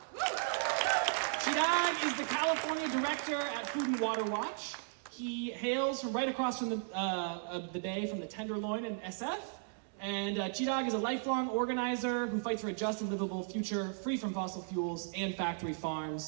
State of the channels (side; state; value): left; silent; digital silence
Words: Chirag is the California director at Food and Water Watch. He hails from right across from the bay from the Tenderloin in SF. And Chirag is a lifelong organizer who fights for a just and livable future free from fossil fuels and factory